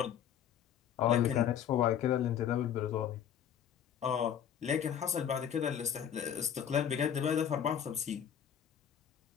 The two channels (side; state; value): right; quieter; 9.0 dB